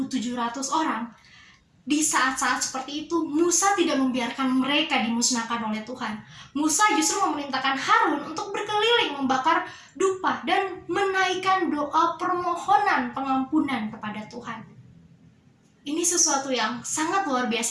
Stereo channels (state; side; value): identical; both; correlation 1.00